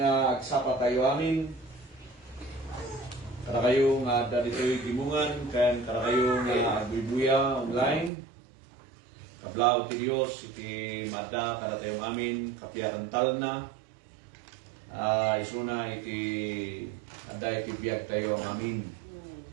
agsapa tayo amin. Kada kayo nga dito'y gimungan, kada kayo nga agbubuya online. Kablaw ti Dios iti mada kada tayo amin, kapiyakantal na. Isuna iti ada iti biyag tayo amin.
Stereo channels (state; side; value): drops out; left; at 8.1 s